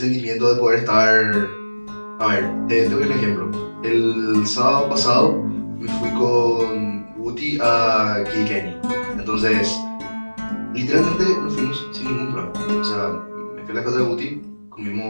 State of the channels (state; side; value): inverted; both; correlation -1.00